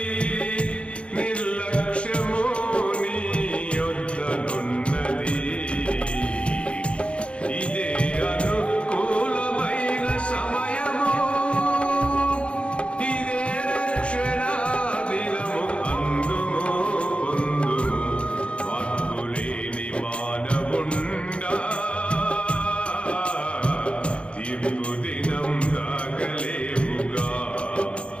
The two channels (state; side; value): late; right; 0.059 ms